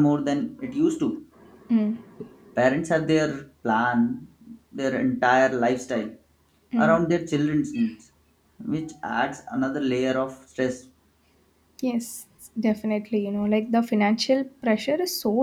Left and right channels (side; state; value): both; identical; correlation 1.00